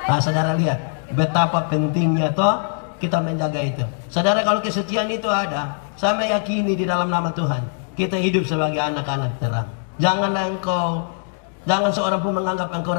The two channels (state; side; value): silent; right; 65 dB below the other